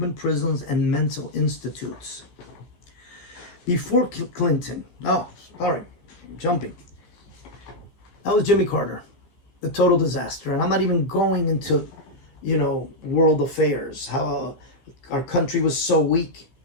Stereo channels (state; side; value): late; right; 14 ms